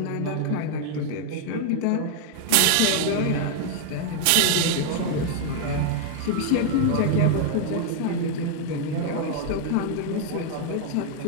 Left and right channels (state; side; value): different; both; correlation 0.00